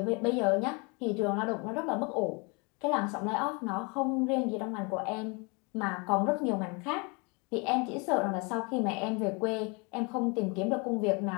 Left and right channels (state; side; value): quieter; right; 30.9 dB